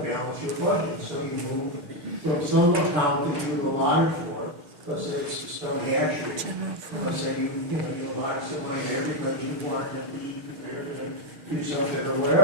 your budget. So you move from some account that you allotted for, let's say it's the stone hatchery. Let's say you allotted some money there because you wanted to be prepared to do something or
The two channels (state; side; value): late; left; 6.5 ms